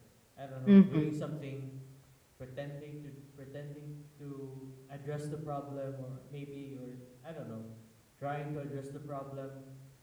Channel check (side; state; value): both; identical; correlation 1.00